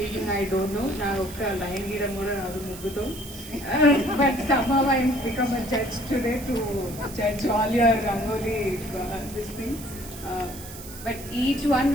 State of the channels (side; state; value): right; noise; hiss, 14 dB below the sound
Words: I don't know. Na okka line gidam kuda raadu mugguto. But somehow I become a judge today to judge all your Rangoli this thing. But each one